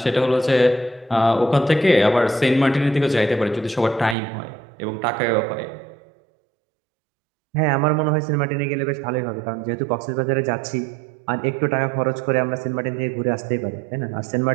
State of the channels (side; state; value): left; drops out; at 4.2 s